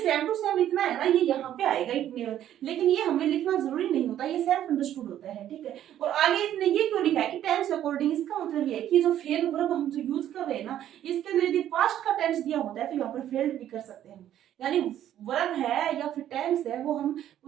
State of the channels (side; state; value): left; quieter; 11.4 dB